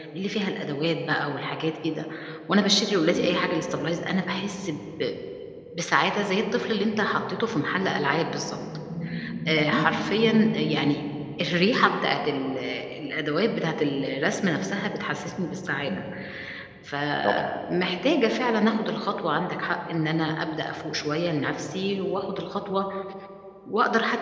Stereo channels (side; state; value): both; identical; correlation 1.00